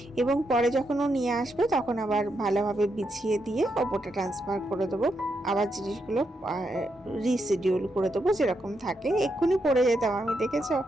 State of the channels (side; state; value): both; normal; correlation 0.82